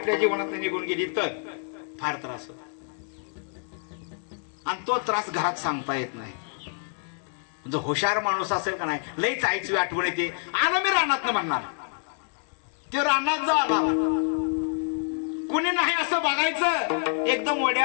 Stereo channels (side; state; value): right; silent; digital silence